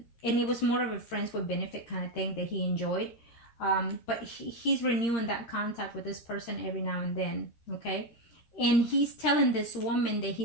it was more of a friends with benefit kind of thing that he enjoyed. But he's renewing that contact with this person every now and then. Okay. And he's telling this woman that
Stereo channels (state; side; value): late; right; 13 ms